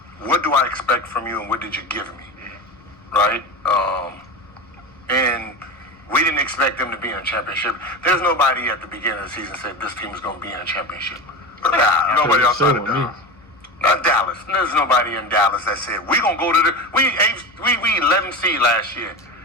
what do I expect from you and what did you give me, right? And we didn't expect them to be in a championship. There's nobody at the beginning of the season said this team is going to be in a championship. Nobody outside of Dallas. Not Dallas. There's nobody in Dallas that said we're going to go to we 11 seed last year,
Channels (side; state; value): both; normal; correlation 0.24